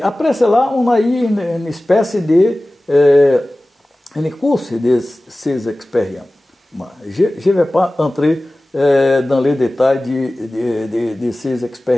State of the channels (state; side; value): normal; both; correlation 0.97